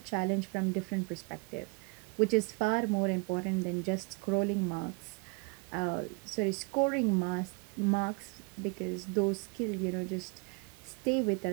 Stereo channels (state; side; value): quieter; left; 31.5 dB